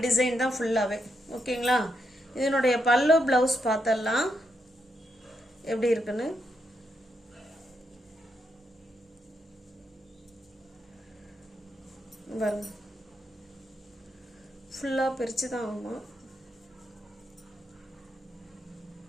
டிசைன் தான் ஃபுல்லாகவே. ஓகேங்களா? இதனுடைய பல்லு ப்ளவுஸ் பார்த்தலாம் எப்படி இருக்குன்னு. பாருங்க, ஃபுல்லாக பிரித்து தான் ஆகும்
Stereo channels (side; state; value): both; normal; correlation 0.81